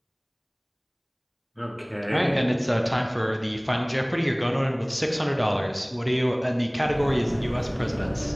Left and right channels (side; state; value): both; identical; correlation 1.00